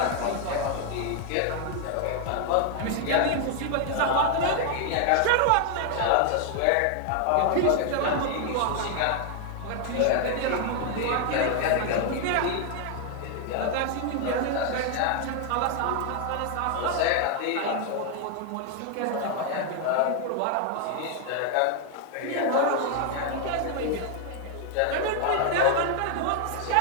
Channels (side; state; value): both; different; correlation 0.00